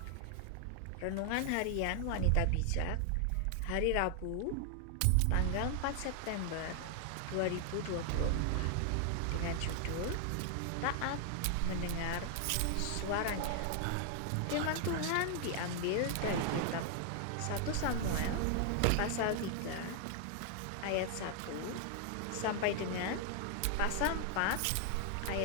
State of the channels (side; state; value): both; different; correlation 0.00